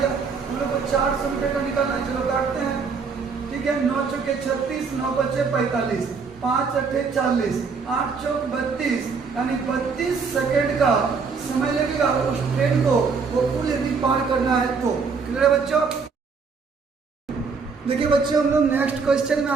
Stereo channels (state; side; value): quieter; left; 5.1 dB